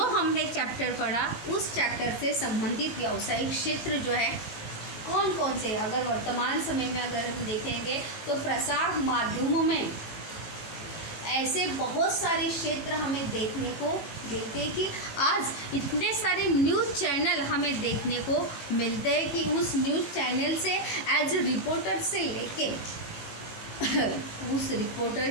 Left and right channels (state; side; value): late; right; 18 ms